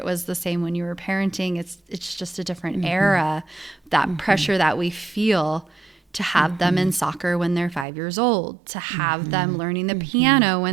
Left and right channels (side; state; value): left; drops out; at 7.9 s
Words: was the same when you were parenting. It's just a different era, that pressure that we feel to have them in soccer when they're 5 years old, to have them learning the piano